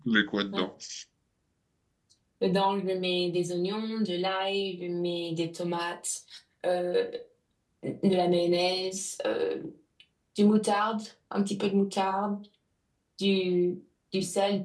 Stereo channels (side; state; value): both; identical; correlation 1.00